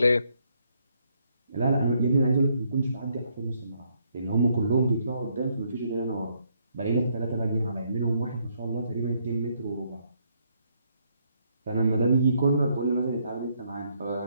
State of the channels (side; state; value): both; inverted; correlation -0.73